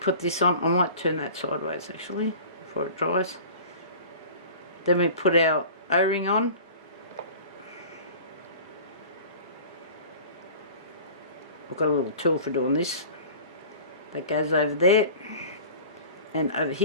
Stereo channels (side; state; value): both; inverted; correlation -0.41